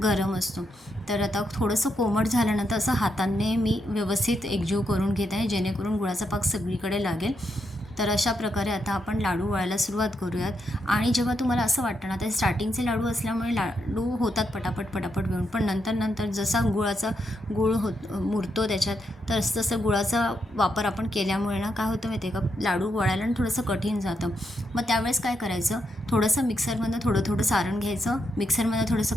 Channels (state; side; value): normal; both; correlation 0.81